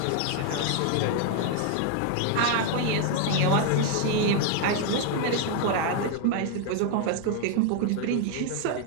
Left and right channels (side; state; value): both; different; correlation 0.00